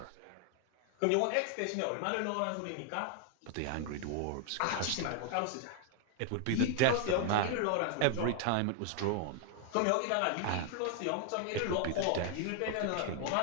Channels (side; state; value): both; different; correlation 0.00